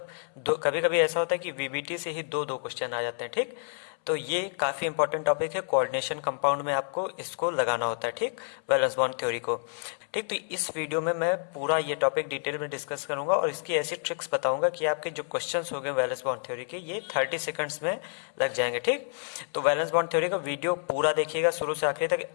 दो, कभी कभी ऐसा होता है कि वीबीटी से ही दो दो क्वेश्चन आ जाते हैं, ठीक। तो ये काफ़ी इंपॉर्टेंट टॉपिक है। कोऑर्डिनेशन कंपाउंड में आपको इसको लगाना होता है, ठीक, वैलेंस बॉन्ड थ्योरी को, ठीक। तो इस वीडियो में मैं पूरा ये टॉपिक डिटेल में डिस्कस करूंगा और इसकी ऐसी ट्रिक्स बताऊंगा कि आपके जो क्वेश्चंस हो गए वैलेंस बॉन्ड थ्योरी के, ये 30 सेकंड्स में लग जाएंगे, ठीक। तो वैलेंस बॉन्ड थ्योरी का वीडियो पूरा देखिएगा शुरू से आखिरी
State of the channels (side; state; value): right; silent; 59 dB below the other